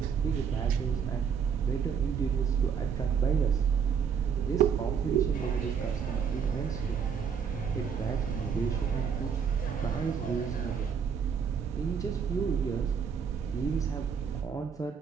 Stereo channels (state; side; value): quieter; left; 6.9 dB